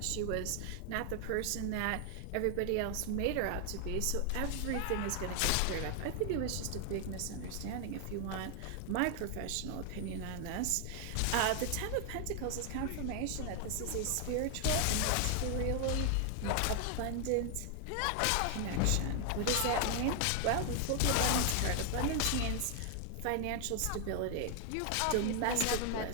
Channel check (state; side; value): different; both; correlation 0.00